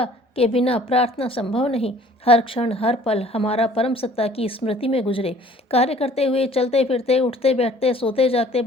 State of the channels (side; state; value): both; normal; correlation 0.53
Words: के बिना प्रार्थना संभव नहीं। हर क्षण हर पल हमारा परम सत्ता की स्मृति में गुजरे। कार्य करते हुए, चलते फिरते, उठते बैठते, सोते जागते